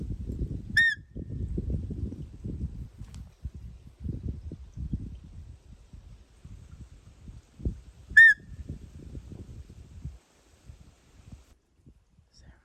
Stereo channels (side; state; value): both; identical; correlation 1.00